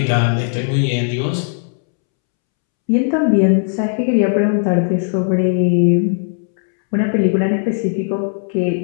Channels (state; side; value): silent; right; 68 dB below the other